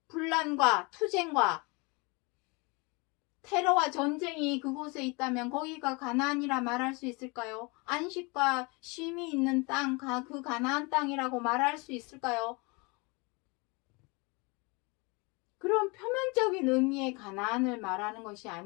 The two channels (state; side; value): quieter; right; 28.4 dB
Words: 분란과 투쟁과 테러와 전쟁이 그곳에 있다면 거기가 가나안이라 말할 수 있을까요? 안식과 쉼이 있는 땅, 그 가나안 땅이라고 말할 수 있을까요? 그런 표면적인 의미의 가나안을 말하는 것이